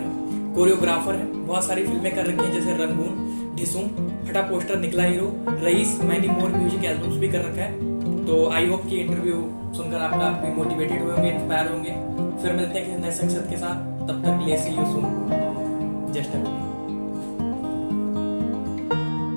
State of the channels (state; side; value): inverted; both; correlation -1.00